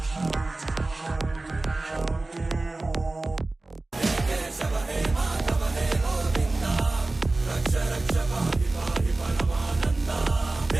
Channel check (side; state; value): left; quieter; 3.0 dB